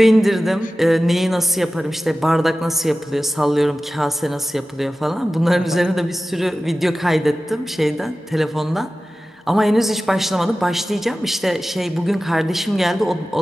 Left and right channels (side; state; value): both; normal; correlation 0.95